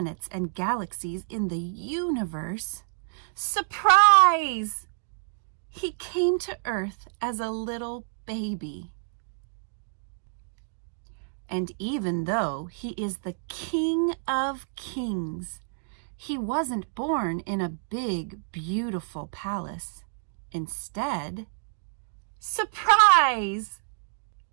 and galaxies in the universe, surprise! He came to Earth as a little baby. And even though he is the King of Kings, he wasn't born in a big, beautiful palace. Instead, surprise!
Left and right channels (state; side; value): silent; left; digital silence